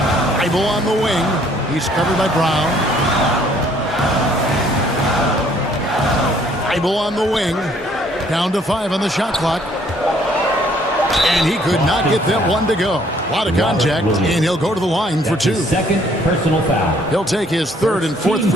Feibel on the wing. He's covered by Brown. Feibel on the wing. Down to 5 on the shot clock. And he could not get that one to go. A lot of contact, and he'll go to the line for 2. Second personal foul. He'll take his 3rd and 4th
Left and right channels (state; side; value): normal; both; correlation 0.62